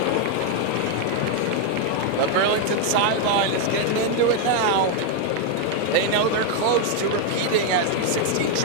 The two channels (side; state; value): both; different; correlation 0.01